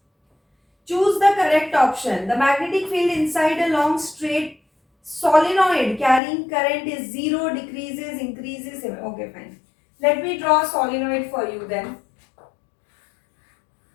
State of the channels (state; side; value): drops out; right; at 6.2 s